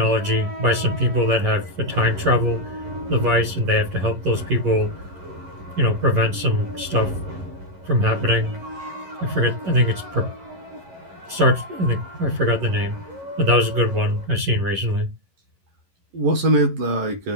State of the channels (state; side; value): late; left; 11 ms